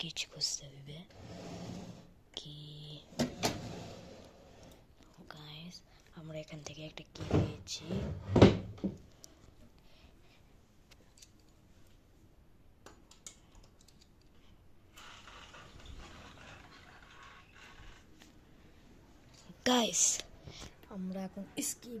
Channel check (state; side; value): identical; both; correlation 1.00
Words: কিছু খুঁজতে হবে। কি গাইস, আমরা এখান থেকে একটা কি পেয়েছি। গাইস, আমরা এখন